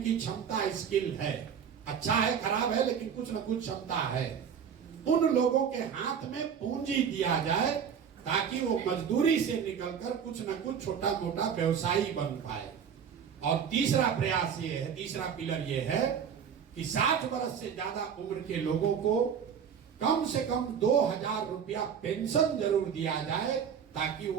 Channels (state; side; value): quieter; left; 7.6 dB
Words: की क्षमता, स्किल है, अच्छा है खराब है लेकिन कुछ न कुछ क्षमता है, उन लोगों के हाथ में पूंजी दिया जाए ताकि वो मजदूरी से निकलकर कुछ न कुछ छोटा मोटा व्यवसायी बन पाए। और तीसरा प्रयास ये है, तीसरा पिलर ये है कि 60 वर्ष से ज्यादा उम्र के लोगों को कम से कम 2,000 रुपया पेंशन जरूर दिया जाए ताकि